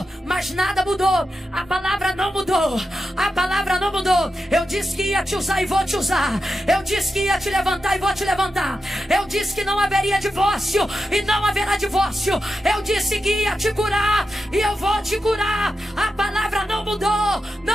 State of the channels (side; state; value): both; normal; correlation 0.89